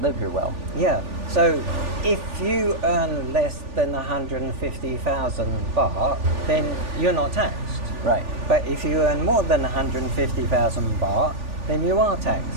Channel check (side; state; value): left; late; 3.4 ms